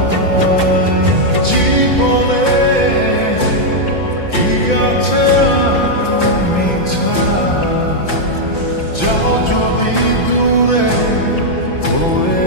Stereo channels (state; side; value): late; right; 5.8 ms